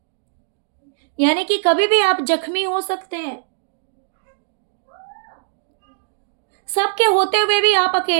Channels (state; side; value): silent; left; digital silence